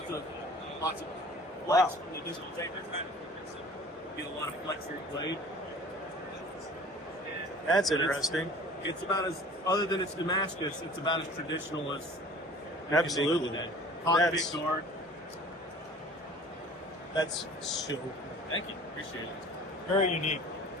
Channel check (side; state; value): both; normal; correlation 0.46